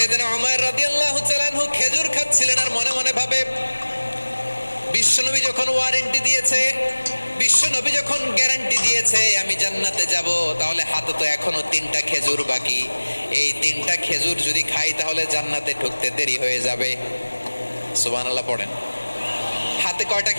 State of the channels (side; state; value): both; inverted; correlation -1.00